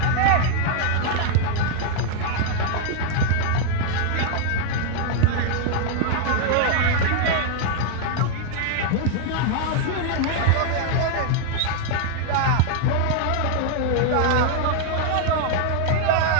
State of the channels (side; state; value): both; different; correlation 0.00